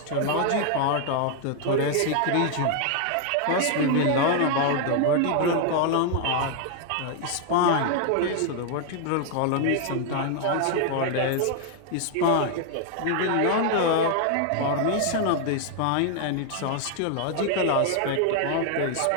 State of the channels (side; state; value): both; different; correlation 0.00